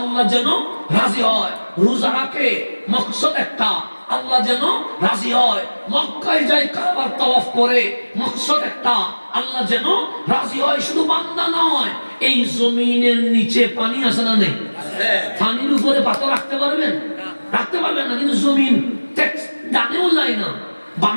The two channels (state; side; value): inverted; both; correlation -1.00